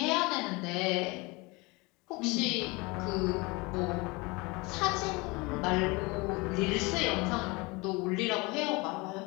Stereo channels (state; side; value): quieter; right; 25.5 dB